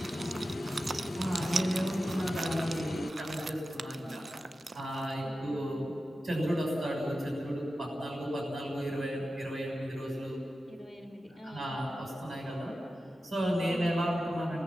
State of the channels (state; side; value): normal; both; correlation 0.92